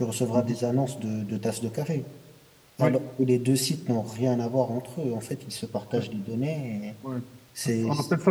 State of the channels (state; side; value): identical; both; correlation 1.00